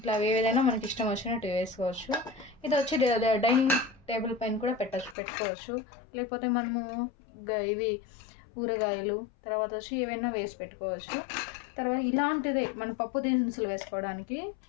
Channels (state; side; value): drops out; right; at 5.2 s